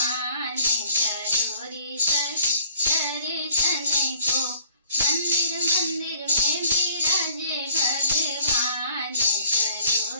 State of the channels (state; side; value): inverted; both; correlation -0.56